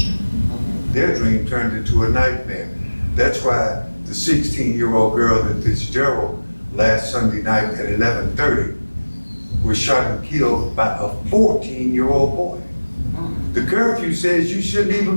Their dream turned into a nightmare. That's why the 16-year-old girl in Fitzgerald last Sunday night at 11:30 was was shot and killed by a 14-year-old boy. The curfew says you shouldn't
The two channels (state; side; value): inverted; both; correlation -1.00